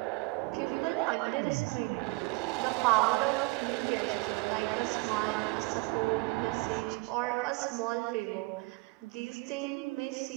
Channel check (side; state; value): left; quieter; 25.4 dB